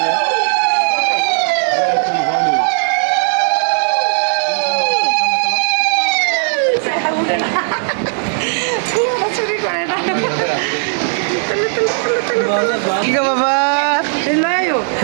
কি গো বাবা?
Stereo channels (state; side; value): silent; left; 64 dB below the other